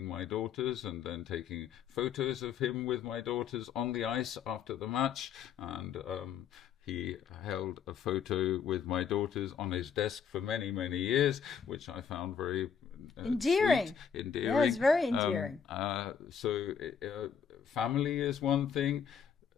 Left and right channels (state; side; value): quieter; right; 7.2 dB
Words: my daughters and then taking photos of him with my daughters on the ice after the match, and he held a photo with my daughters on his desk for many, many years, which I found very endearing. Sweet, endearing. Yeah, it's very endearing. Family is one thing.